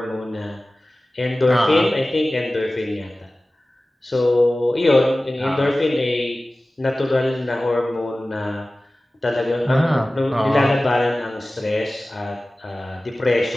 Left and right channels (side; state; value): both; normal; correlation 0.97